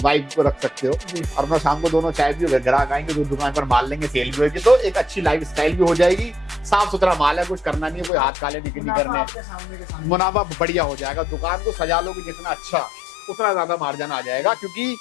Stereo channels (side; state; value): right; drops out; at 8.1 s